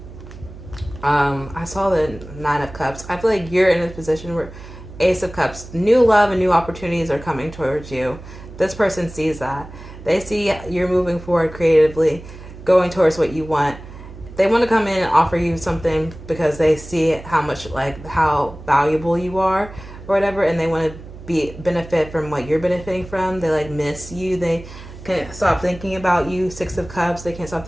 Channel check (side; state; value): right; noise; hum, 15 dB below the sound